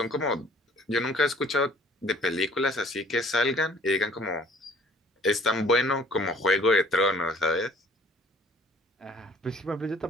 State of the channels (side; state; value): both; normal; correlation 0.55